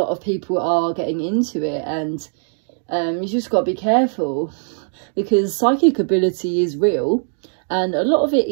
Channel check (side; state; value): left; silent; digital silence